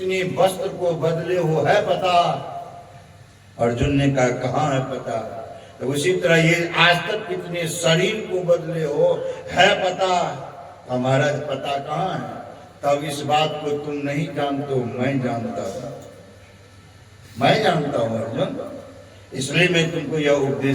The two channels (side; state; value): both; identical; correlation 1.00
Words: वस्त्र को बदले हो है पता? अर्जुन ने कहा, कहाँ है पता? तो उसी तरह ये आज तक कितने शरीर को बदले हो है पता? हमारा पता कहाँ है? तब इस बात को तुम नहीं जानते हो, मैं जानता हूं, मैं जानता हूं अर्जुन, इसलिए मैं तुमको यह